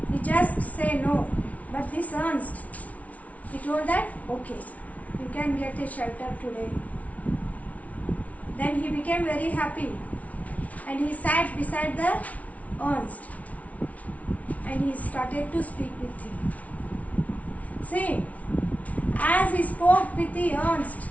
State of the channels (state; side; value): late; right; 0.069 ms